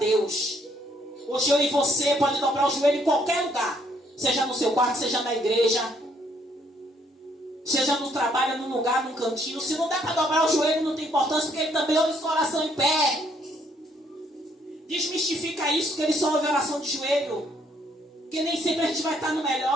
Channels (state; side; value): normal; both; correlation 0.68